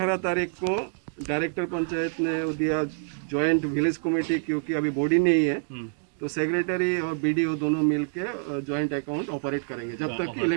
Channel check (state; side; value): silent; left; digital silence